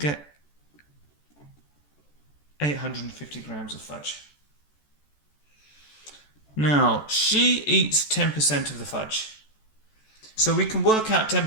850 grams of fudge. Now, she eats 10% of the fudge. So we can work out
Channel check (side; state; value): right; late; 14 ms